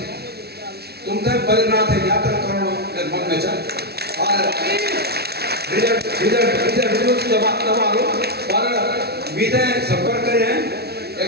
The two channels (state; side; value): late; left; 0.46 ms